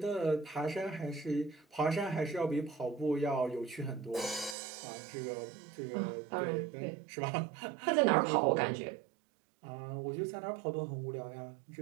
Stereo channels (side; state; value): left; drops out; at 4.5 s